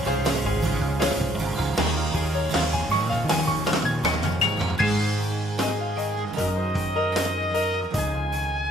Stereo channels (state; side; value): normal; both; correlation 0.67